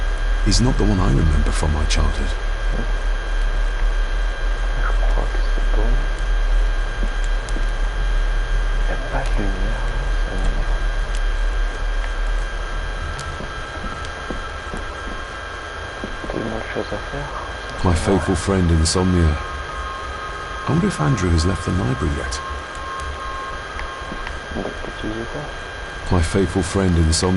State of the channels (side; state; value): both; identical; correlation 1.00